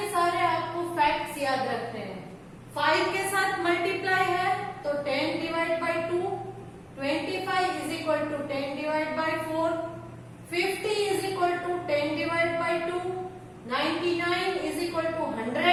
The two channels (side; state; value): both; identical; correlation 1.00